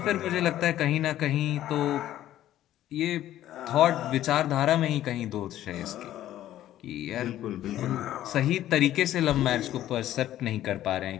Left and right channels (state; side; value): quieter; right; 13.0 dB